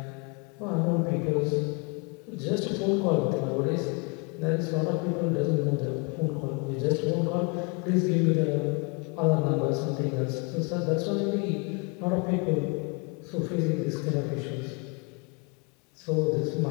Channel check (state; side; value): quieter; right; 32.1 dB